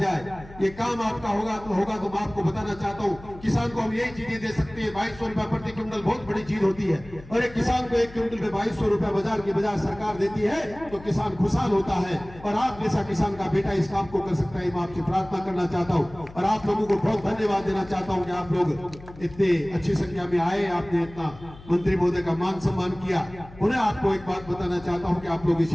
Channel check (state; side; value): noise; left; hum, 19 dB below the sound